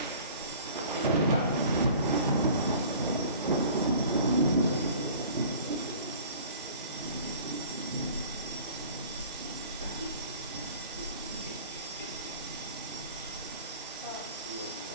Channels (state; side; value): inverted; both; correlation -0.46